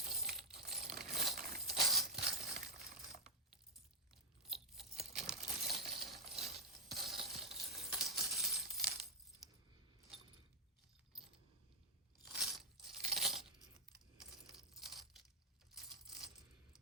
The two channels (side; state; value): both; normal; correlation -0.03